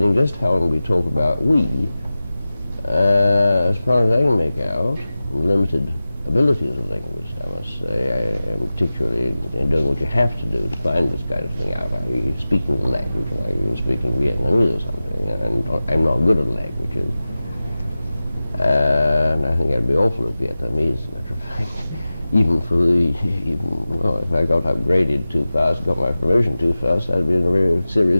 just how we talk about we, as far as I can make out, limited ability as a linguist, I must say, I am particularly doing what you have to do to find this kind of thing out. Are you speaking the language, like you're speaking Vietnamese or something, and I'm not good at languages. And I think I'd be awful at Vietnamese, as a matter of fact. Well, if I got upgraded too fast, got my promotion too fast, I'd be in a very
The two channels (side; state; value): both; inverted; correlation -0.96